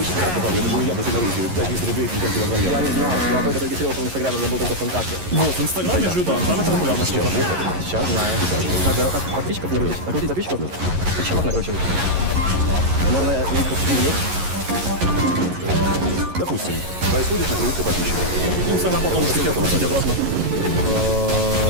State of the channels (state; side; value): late; left; 11 ms